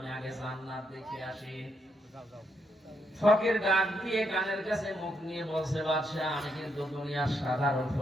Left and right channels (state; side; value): normal; both; correlation 0.78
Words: আগে জান্নাত দেখে আসি। ফকির ডাক দিয়ে কানের কাছে মুখ নিয়ে বলছে, বাদশাহ আমি কিন্তু দুনিয়ার সাধারণ